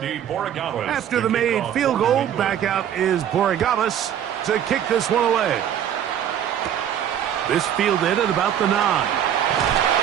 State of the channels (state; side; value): quieter; left; 9.9 dB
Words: Borregales. After the made field goal, back out is Borregales to kick this one away. This fielded at about the 9.